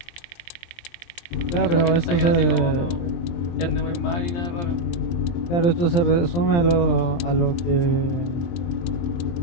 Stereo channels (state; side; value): late; right; 23 ms